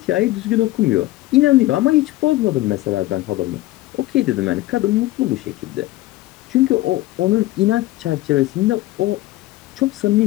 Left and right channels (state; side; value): quieter; right; 17.4 dB